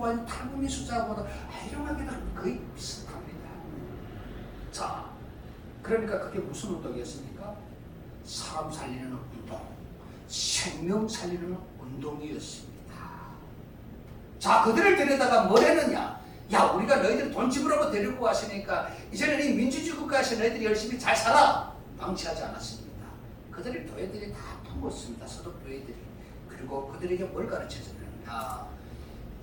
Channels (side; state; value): both; identical; correlation 1.00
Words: 있는 탈북민 숫자보다 아이러니하게도 거의 비슷합니다. 자, 그러니까 그게 무슨 운동이었습니까? 사람 살리는 운동, 생명 살리는 운동이었습니다. 자, 그들을 데려다가 뭘 했느냐? 야, 우리가 너희들 돈 지불하고 데리고 왔으니까 이제는 이 민주주의 국가에서 너희들이 열심히 잘 살아. 방치하지 않았습니다. 그들의 교회들이 다 품었습니다. 서독 교회들이. 그리고 그들에게 뭘 가르쳐줬느냐?